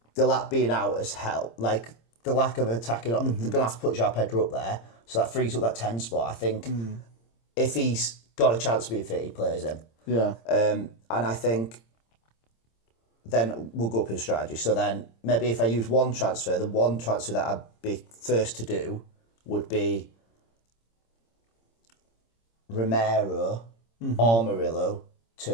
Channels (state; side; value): late; right; 26 ms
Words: the lack being out has helped. Like, the lack of attacking... They're going to have to put João Pedro up there, so that frees up that 10 spot. I think if he's got a chance to be fit, he plays him. Yeah. And I think... Then we'll go up in strategy. So then maybe if I use one transfer, the one transfer that I'd be first to do would be Romero or Murillo